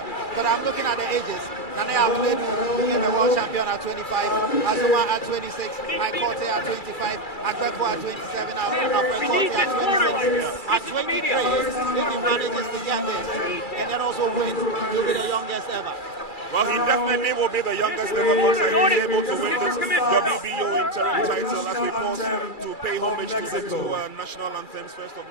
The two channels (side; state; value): right; late; 2.4 ms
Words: But I'm looking at the ages. Nane Abuledu became the world champion at 25, Azuma at 26, Aikote at 25, Agbeko at 27, Aikote at 26. At 23, if he manages to get this and then also win, he'll be the youngest ever. Well, he definitely will be the youngest ever boxer. He's able to win this WBO interim title as we pause to pay homage to the 2 national anthems, first of